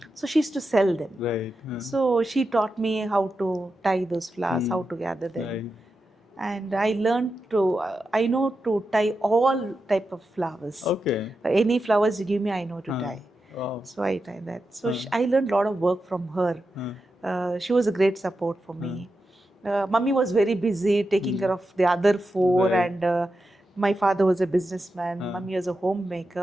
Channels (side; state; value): both; normal; correlation 0.89